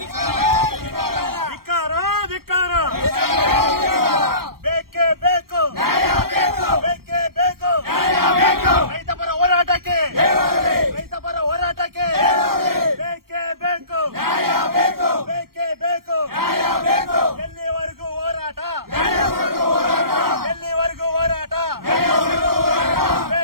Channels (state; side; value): late; left; 0.93 ms